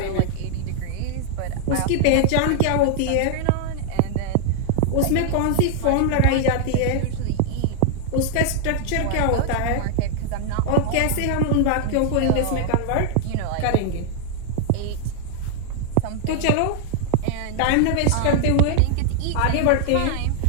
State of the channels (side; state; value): both; different; correlation -0.01